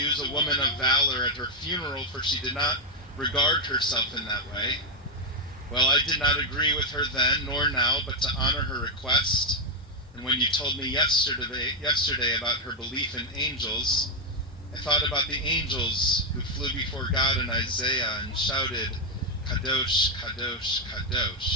a woman of valor at her funeral, for she did not regard herself in that way. Well, I did not agree with her then, nor now, but to honor her request. And when you told me yesterday about her belief in angels, I thought about the angels who flew before God in Isaiah and shouted, Kadosh, Kadosh,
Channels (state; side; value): normal; both; correlation 0.03